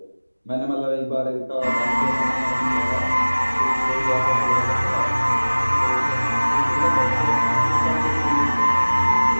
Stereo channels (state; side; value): inverted; both; correlation -1.00